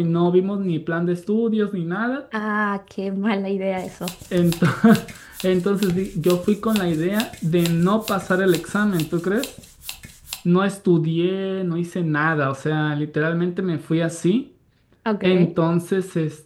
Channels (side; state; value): both; identical; correlation 1.00